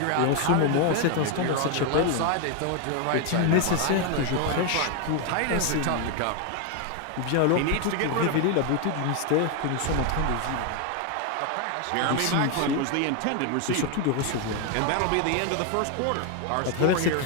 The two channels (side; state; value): both; different; correlation 0.01